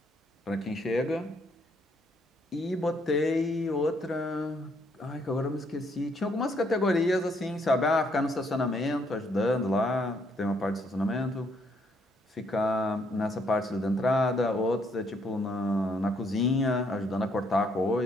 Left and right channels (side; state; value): both; normal; correlation 0.70